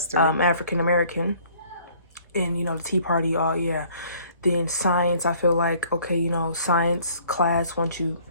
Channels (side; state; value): both; inverted; correlation -0.57